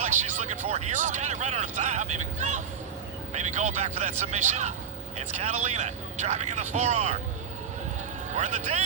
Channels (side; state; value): left; quieter; 7.4 dB